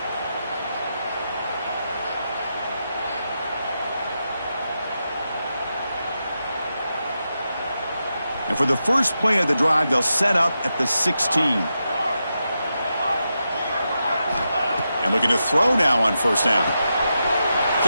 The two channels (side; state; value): both; inverted; correlation -0.87